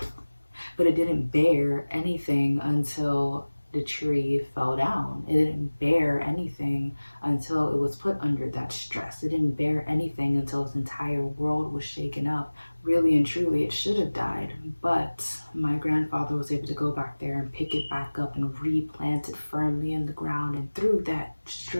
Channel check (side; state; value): both; inverted; correlation -1.00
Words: bear anything until the tree fell down. It didn't bear anything until it was put under that stress. It didn't bear anything until its entire world was shaken up. Really and truly, it should have died, but my grandfather was able to go back there and pick it back up and replant it firmly in the ground, and through that